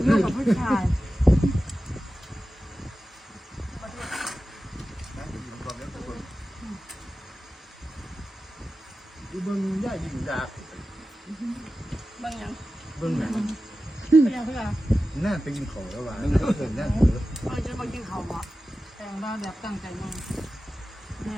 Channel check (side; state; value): both; normal; correlation 0.94